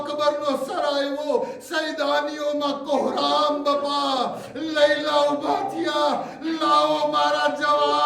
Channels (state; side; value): identical; both; correlation 1.00